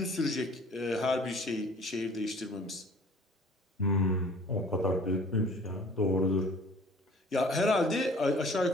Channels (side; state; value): both; normal; correlation 0.50